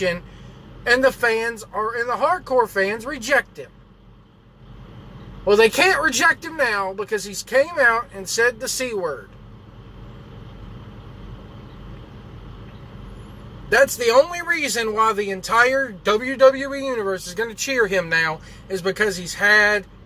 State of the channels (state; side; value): identical; both; correlation 1.00